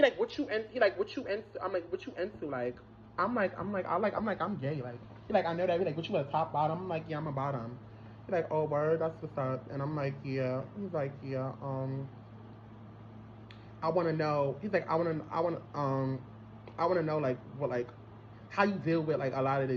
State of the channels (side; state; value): both; identical; correlation 1.00